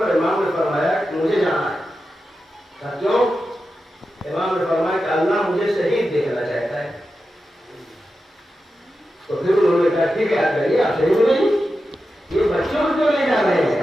امام نے فرمایا کہ مجھے جانا ہے. کہا کیوں؟ امام نے فرمایا کہ اللہ مجھے شہید دیکھنا چاہتا ہے. تو پھر انہوں نے کہا ٹھیک ہے آپ جائیے، آپ شہید ہو جائیے. یہ بچوں کو لے جا رہے ہیں،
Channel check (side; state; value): both; normal; correlation 0.91